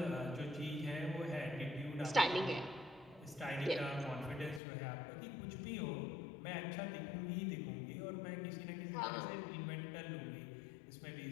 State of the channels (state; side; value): drops out; right; at 4.6 s